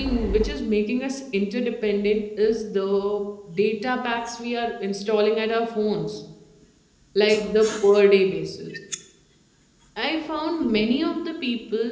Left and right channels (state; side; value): identical; both; correlation 1.00